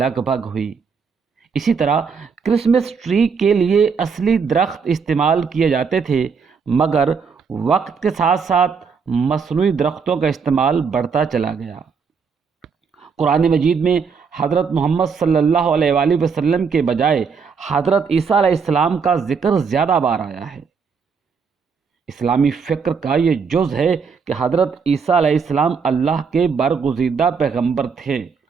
بھگ ہوئی۔ اسی طرح کرسمس ٹری کے لیے اصلی درخت استعمال کیے جاتے تھے، مگر وقت کے ساتھ ساتھ مصنوعی درختوں کا استعمال بڑھتا چلا گیا۔ قرآن مجید میں حضرت محمد صلی اللہ علیہ وآلہ وسلم کے بجائے حضرت عیسیٰ علیہ السلام کا ذکر زیادہ بار آیا ہے۔ اسلامی فکر کا یہ جز ہے کہ حضرت عیسیٰ علیہ السلام اللہ کے برگزیدہ پیغمبر تھے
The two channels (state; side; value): quieter; left; 5.7 dB